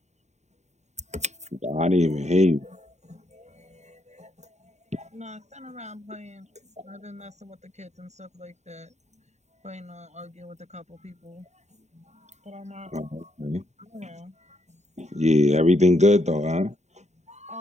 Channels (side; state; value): left; late; 0.33 ms